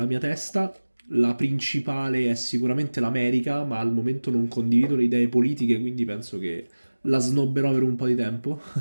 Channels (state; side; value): inverted; both; correlation -1.00